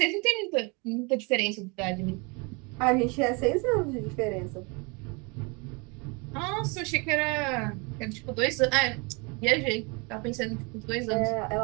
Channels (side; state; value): left; quieter; 30.1 dB